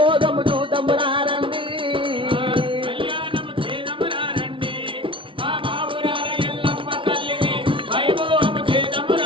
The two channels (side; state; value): left; late; 0.25 ms